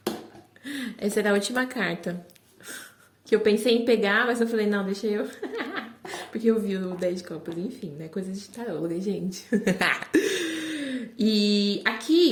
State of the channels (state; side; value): identical; both; correlation 1.00